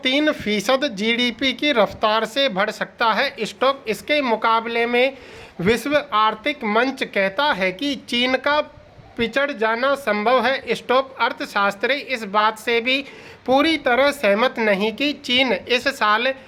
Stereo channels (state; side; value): identical; both; correlation 1.00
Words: जीडीपी की रफ्तार से बढ़ सकता है। इसके मुकाबले में विश्व आर्थिक मंच कहता है कि चीन का पिछड़ जाना संभव है। अर्थशास्त्री इस बात से भी पूरी तरह सहमत नहीं कि चीन इस साल